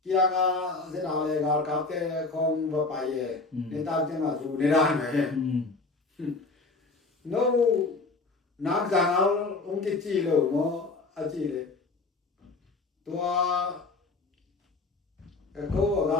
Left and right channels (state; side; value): quieter; right; 3.7 dB